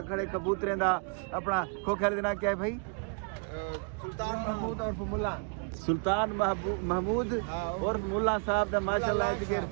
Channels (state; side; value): quieter; left; 36.3 dB